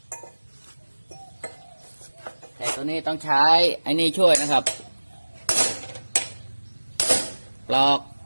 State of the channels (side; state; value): both; inverted; correlation -1.00